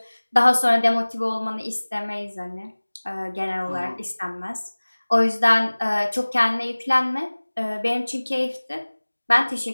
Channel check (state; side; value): inverted; both; correlation -1.00